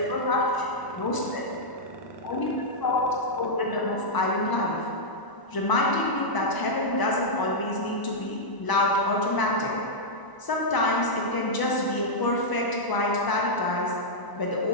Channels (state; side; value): late; right; 1.0 ms